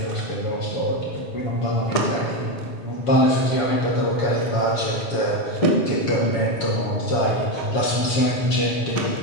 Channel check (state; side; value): late; right; 7.1 ms